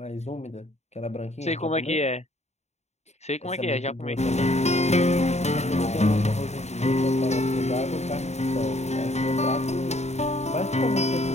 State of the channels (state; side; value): late; right; 0.32 ms